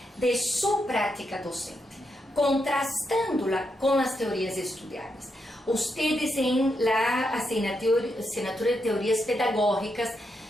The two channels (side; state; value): both; normal; correlation 0.82